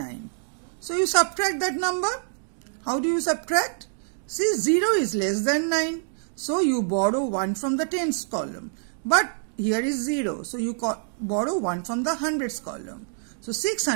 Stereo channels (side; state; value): left; silent; digital silence